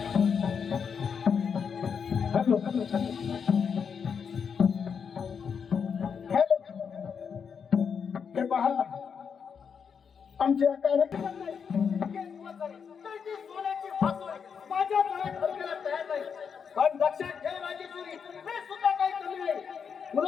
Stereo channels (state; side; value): quieter; right; 6.6 dB